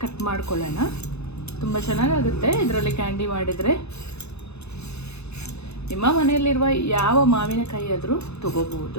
ಕಟ್ ಮಾಡ್ಕೊಳ್ಳೋಣ. ತುಂಬ ಚೆನ್ನಾಗಾಗುತ್ತೆ ಇದರಲ್ಲಿ ಕ್ಯಾಂಡಿ ಮಾಡಿದರೆ. ನಿಮ್ಮ ಮನೆಯಲ್ಲಿರುವ ಯಾವ ಮಾವಿನಕಾಯಿ ಆದರೂ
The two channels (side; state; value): right; late; 0.80 ms